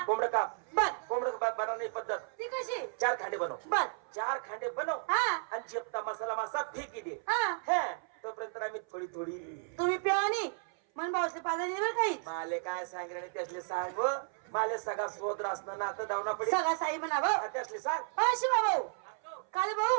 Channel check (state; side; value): silent; left; 55 dB below the other